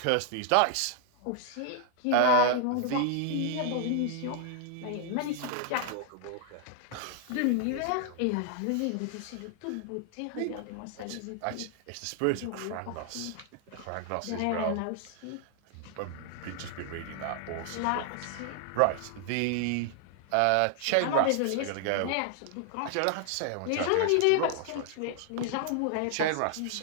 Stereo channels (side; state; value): both; different; correlation 0.00